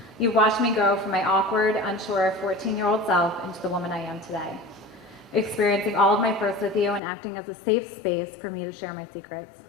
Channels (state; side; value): drops out; right; at 7.0 s